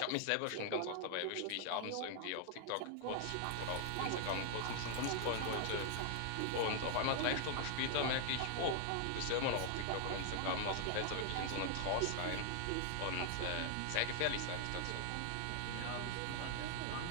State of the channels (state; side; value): different; both; correlation 0.00